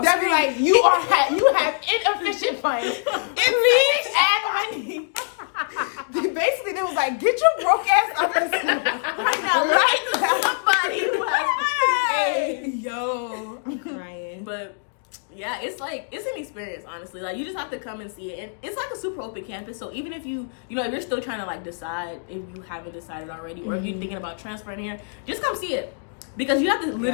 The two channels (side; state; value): right; silent; digital silence